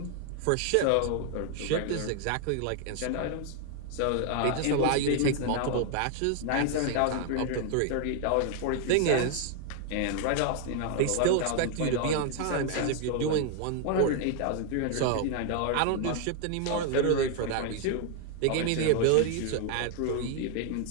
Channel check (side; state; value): both; different; correlation 0.00